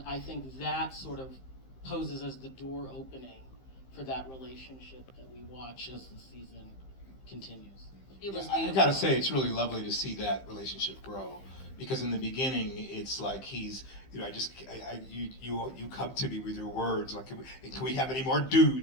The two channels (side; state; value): right; late; 15 ms